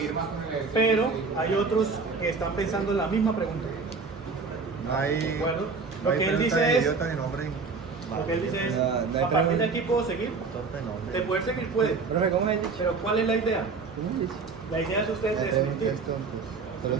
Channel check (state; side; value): quieter; left; 4.6 dB